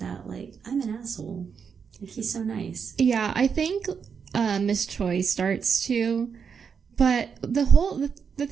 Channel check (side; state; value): left; quieter; 6.5 dB